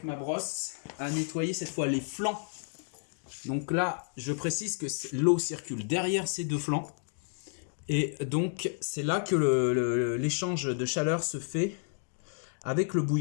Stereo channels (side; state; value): right; silent; digital silence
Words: ma brosse à nettoyer cette fois les flancs. Donc là, je précise que l'eau circule derrière ces deux flancs. Et donc, c'est là que l'échange de chaleur se fait avec le